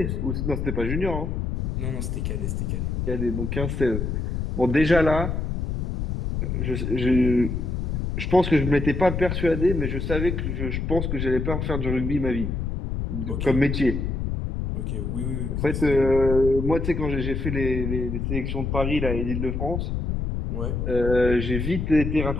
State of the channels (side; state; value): left; noise; rumble, 2 dB below the sound